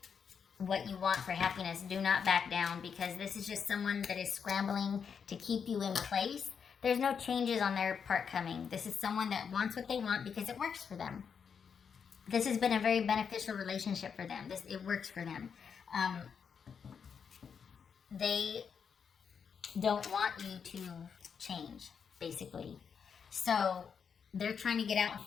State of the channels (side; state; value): right; quieter; 6.7 dB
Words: what you want for happiness. Do not back down, because this is just someone that is scrambling to keep you in place. There's no changes on their part coming. This is someone that wants what they want because it works for them. This has been a very beneficial relationship for them. It works for them. They don't want you to change, basically. So they're trying to get out in